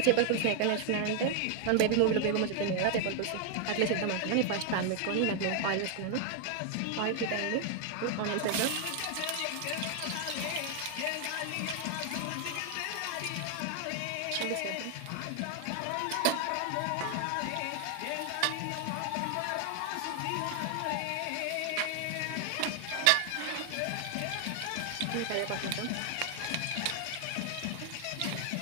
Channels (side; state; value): both; different; correlation 0.00